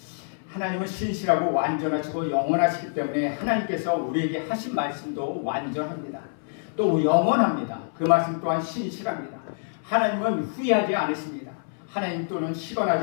하나님은 신실하고 완전하시고 영원하시기 때문에 하나님께서 우리에게 하신 말씀도 완전합니다. 또 영원합니다. 그 말씀 또한 신실합니다. 하나님은 후회하지 않으십니다. 하나님 또는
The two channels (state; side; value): silent; right; 57 dB below the other